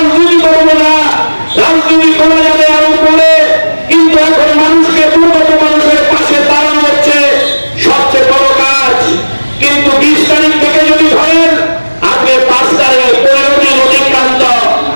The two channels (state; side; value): inverted; both; correlation -1.00